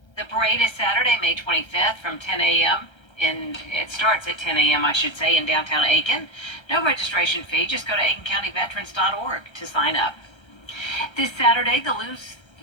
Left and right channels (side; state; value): right; late; 1.3 ms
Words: The parade is Saturday, May 25th from 10 a.m. It starts at 10 a.m., I should say, in downtown Aiken. No registration fee. Just go to aikencountyveterans.org to sign up. This Saturday, the